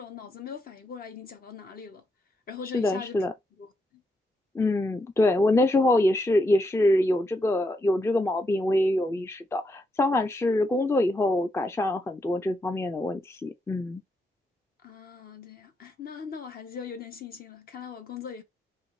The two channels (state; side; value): normal; both; correlation 0.81